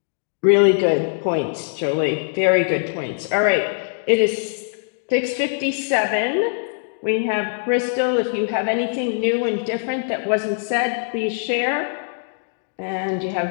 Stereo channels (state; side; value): silent; right; digital silence